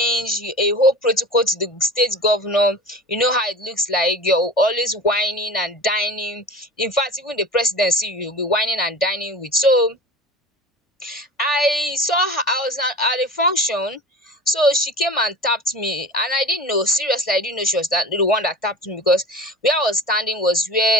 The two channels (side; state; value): both; normal; correlation 0.36